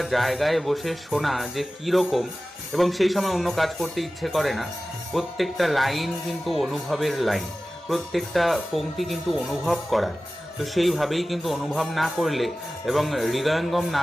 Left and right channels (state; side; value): normal; both; correlation 0.96